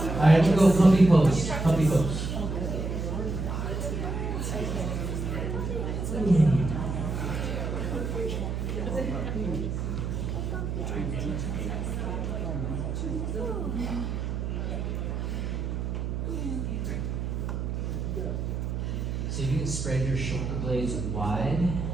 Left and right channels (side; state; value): right; noise; hum, 2 dB below the sound